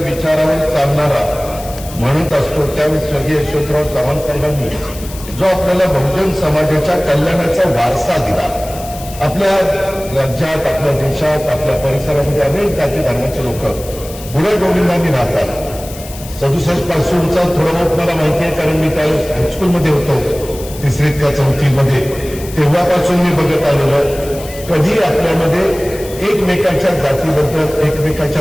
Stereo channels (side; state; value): left; noise; hiss, 15 dB below the sound